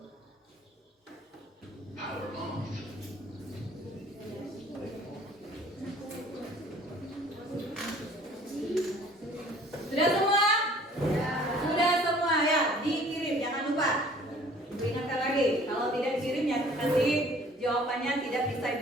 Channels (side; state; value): both; normal; correlation 0.53